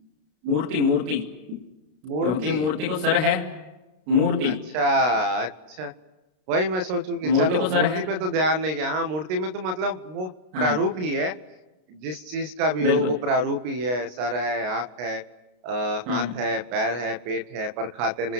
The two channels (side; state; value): left; late; 33 ms